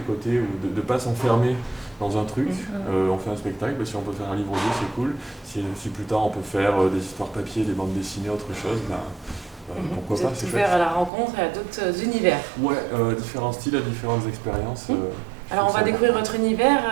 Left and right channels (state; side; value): drops out; left; at 11.1 s